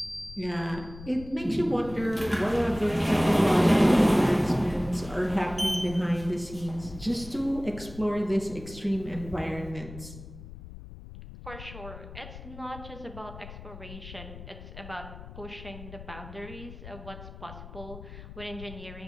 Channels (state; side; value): noise; left; rumble, 14 dB below the sound